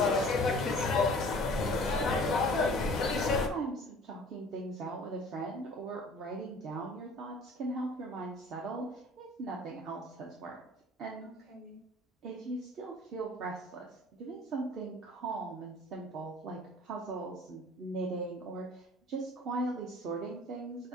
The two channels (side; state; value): both; normal; correlation 0.49